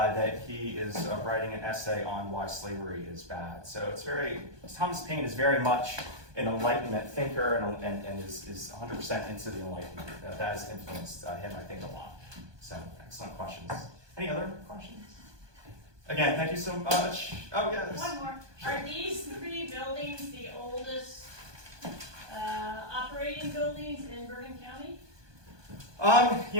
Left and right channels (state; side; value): late; left; 1.2 ms